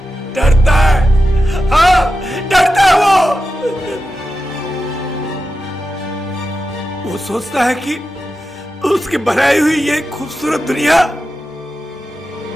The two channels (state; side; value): normal; both; correlation 0.91